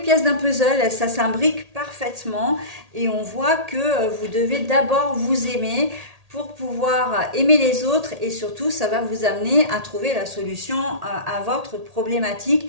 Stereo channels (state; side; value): late; left; 1.8 ms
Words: d'un puzzle, ça s'imbrique parfaitement et on voit que vous devez d'abord vous aimer pour pouvoir aimer les autres et surtout, ça va vous amener à trouver la solution à votre